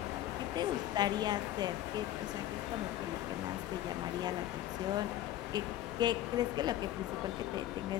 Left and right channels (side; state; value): right; quieter; 13.3 dB